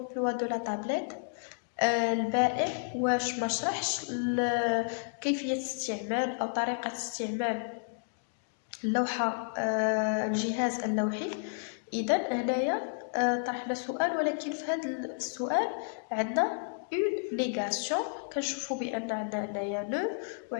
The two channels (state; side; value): silent; right; digital silence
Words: de la tablette? البائع واش ما شرحش كيفية استعمال أو طريقة استعمال اللوحة الجهاز اللوحي. إذا هنايا طرحنا سؤال ولكن في هذا السؤال عندنا une négation. كنشوفوا بأن عندنا هنايا le